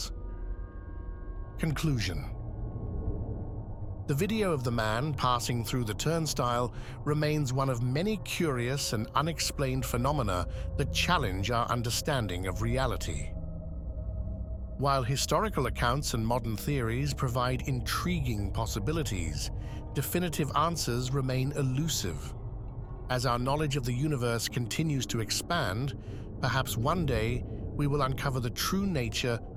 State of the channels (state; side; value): identical; both; correlation 1.00